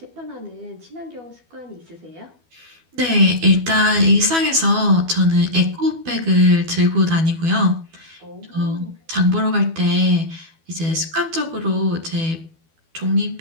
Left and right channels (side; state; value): left; late; 12 ms